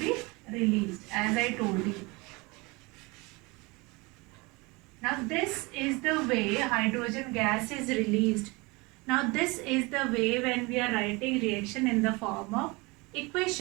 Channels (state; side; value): quieter; left; 25.5 dB